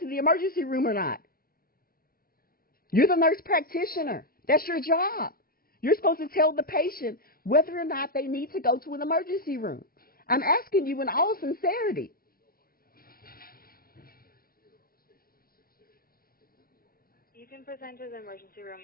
the emergency room or not. You're the nurse practitioner. That's your job. You're supposed to tell the patient whether or not they need to go to an emergency room. I'm asking you in all sincerity. You can present to the emergency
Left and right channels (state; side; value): late; right; 0.43 ms